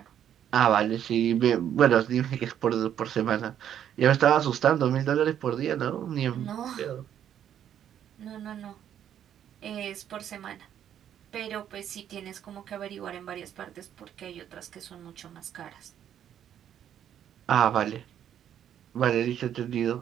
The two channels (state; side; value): quieter; left; 10.0 dB